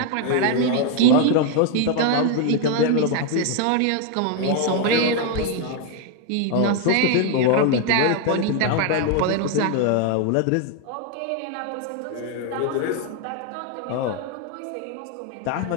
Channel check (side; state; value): both; different; correlation 0.01